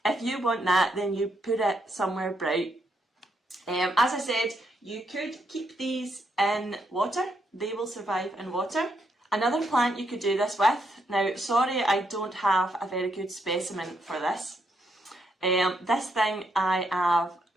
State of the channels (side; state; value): both; normal; correlation 0.77